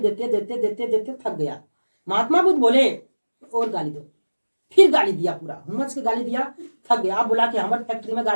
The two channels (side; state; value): both; inverted; correlation -1.00